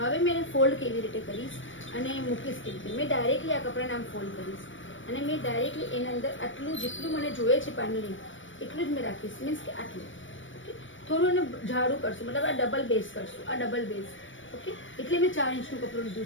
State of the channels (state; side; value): late; right; 0.56 ms